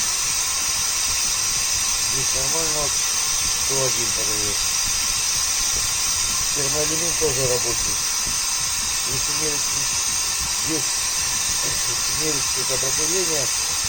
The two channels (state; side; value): identical; both; correlation 1.00